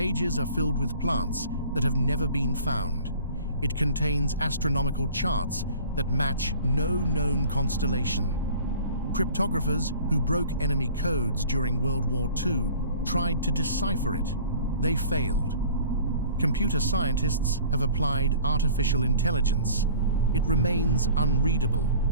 are filled with plants that have never been found. It contains astronomical charts that match no known constellation. Cryptographers who broke enemy codes during World War II tried to decipher it. They failed. Computer scientists have applied artificial intelligence. It remains unreadable.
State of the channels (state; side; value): inverted; both; correlation -0.47